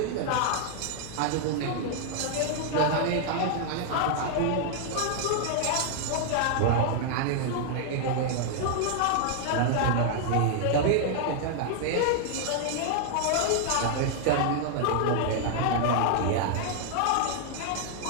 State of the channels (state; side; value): different; both; correlation 0.00